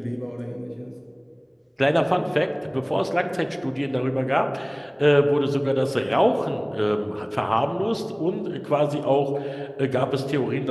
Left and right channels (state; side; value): identical; both; correlation 1.00